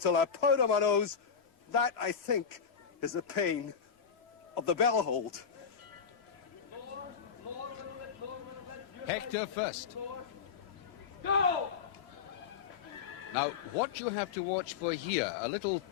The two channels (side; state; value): right; quieter; 6.7 dB